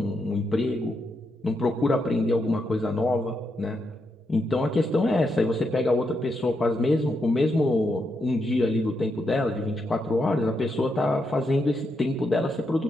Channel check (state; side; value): normal; both; correlation 0.82